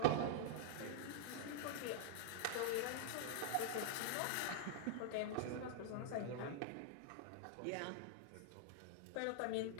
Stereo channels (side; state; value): both; different; correlation 0.00